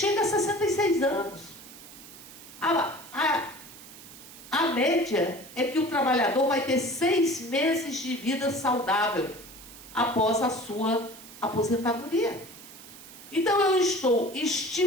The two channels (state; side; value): noise; right; hiss, 17 dB below the sound